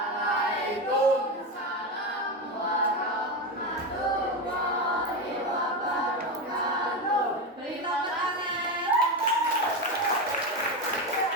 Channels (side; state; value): both; normal; correlation 0.16